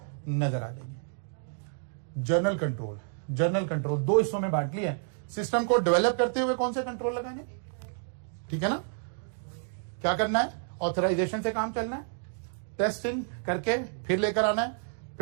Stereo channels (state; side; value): silent; left; 58 dB below the other